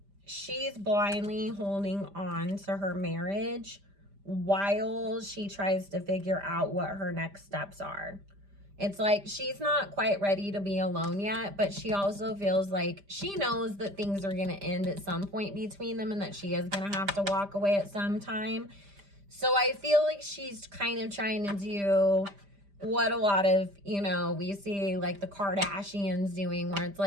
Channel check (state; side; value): late; left; 5.0 ms